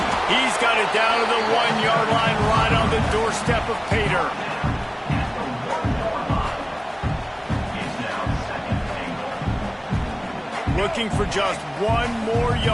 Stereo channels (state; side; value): identical; both; correlation 1.00